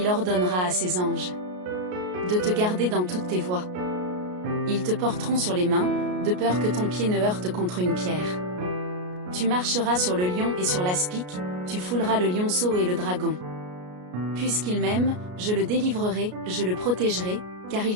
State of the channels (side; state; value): left; late; 33 ms